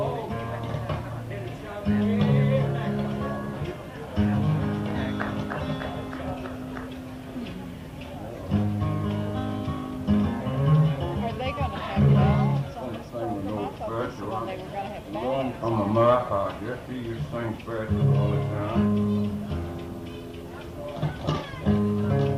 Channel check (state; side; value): identical; both; correlation 1.00